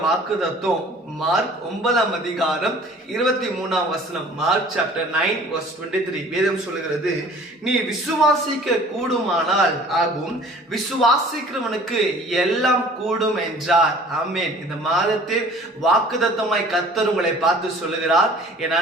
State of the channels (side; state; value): both; normal; correlation 0.49